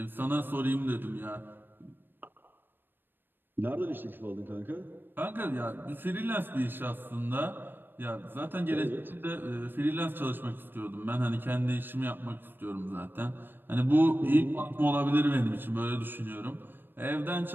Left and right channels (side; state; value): left; late; 0.096 ms